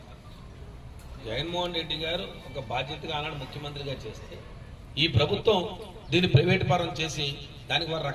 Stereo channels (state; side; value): identical; both; correlation 1.00